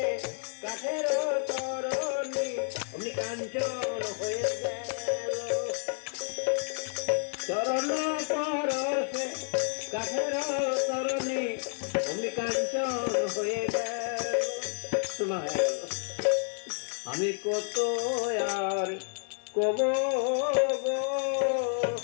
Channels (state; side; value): silent; right; 58 dB below the other